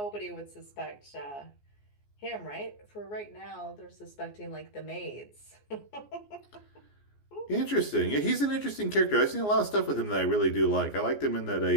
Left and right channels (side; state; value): right; late; 14 ms